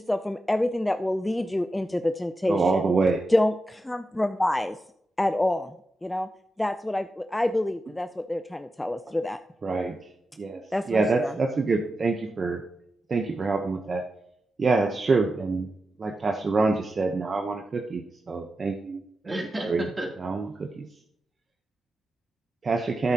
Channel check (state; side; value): normal; both; correlation 0.90